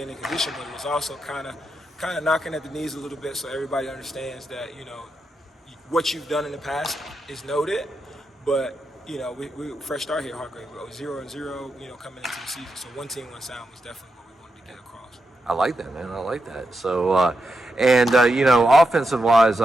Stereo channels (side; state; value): both; normal; correlation 0.86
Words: in condition, but it was also kind of knocking at the knees a little bit so everybody understands that, what you've done in the past is noted, but we fresh start here, Hargrave. We go 0-0, coming into the season. So one team, one sound was definitely what we wanted to get across. I like that, man. I like that. So, offensive wise,